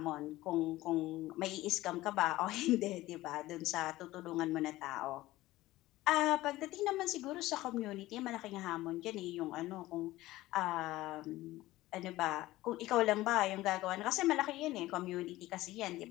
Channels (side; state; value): right; quieter; 17.2 dB